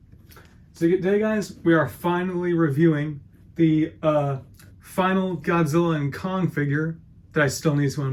So today guys, we are finally reviewing the final Godzilla and Kong figure that I still need to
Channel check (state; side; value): identical; both; correlation 1.00